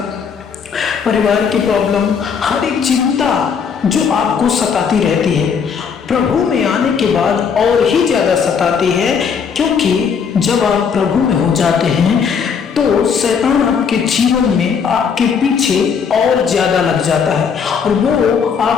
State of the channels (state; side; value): quieter; right; 6.5 dB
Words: परिवार की प्रॉब्लम, हर एक चिंता जो आपको सताती रहती है, प्रभु में आने के बाद और ही ज्यादा सताती है। क्योंकि जब आप प्रभु में हो जाते हैं तो शैतान आपके जीवन में आपके पीछे और ज्यादा लग जाता है और वो